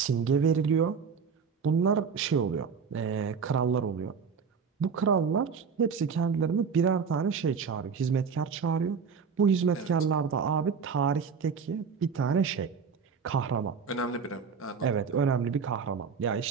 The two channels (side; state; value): left; quieter; 6.0 dB